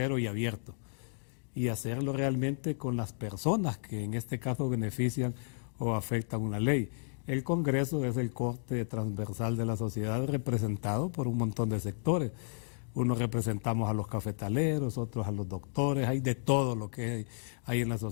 y abierto, y hacerlo realmente con las personas que en este caso benefician o afectan una ley. El Congreso es el corte transversal de la sociedad representado por un montón de sectores. Unos representamos a los cafetaleros, otros a los doctores, hay de todo lo que hay en la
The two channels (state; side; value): silent; right; digital silence